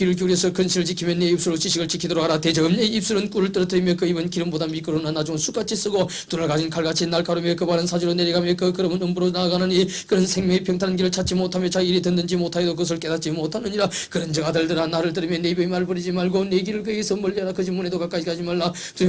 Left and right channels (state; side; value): identical; both; correlation 1.00